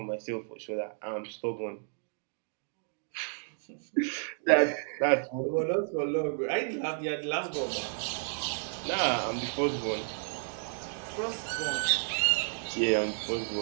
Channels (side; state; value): left; silent; 57 dB below the other